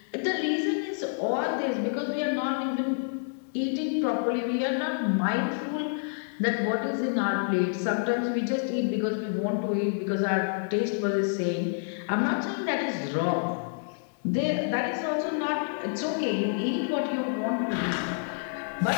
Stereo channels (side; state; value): right; silent; digital silence